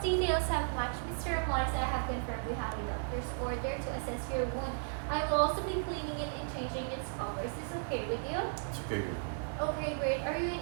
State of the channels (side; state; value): left; silent; digital silence